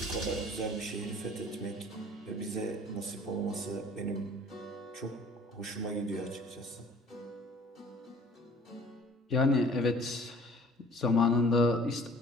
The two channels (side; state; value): both; normal; correlation 0.52